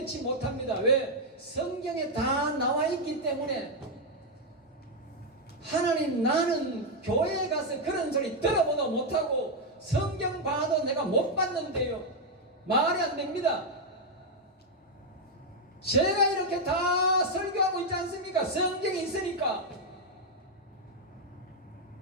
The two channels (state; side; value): normal; both; correlation 0.00